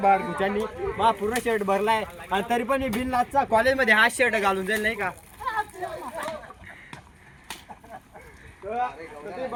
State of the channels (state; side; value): identical; both; correlation 1.00